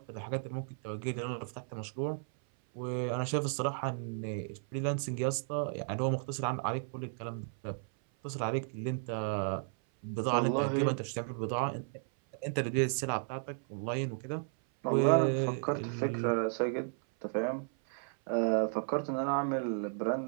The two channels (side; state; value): left; silent; 55 dB below the other